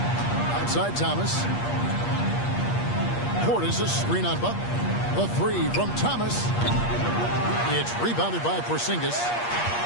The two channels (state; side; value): late; right; 8.5 ms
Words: Outside Thomas. Portis a screen on Butler. A three from Thomas. It's rebounded by Porzingis.